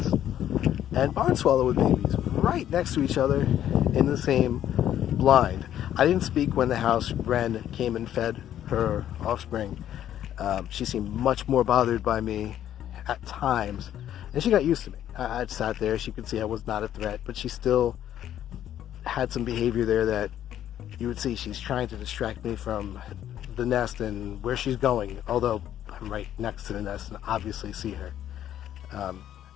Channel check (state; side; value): quieter; right; 11.1 dB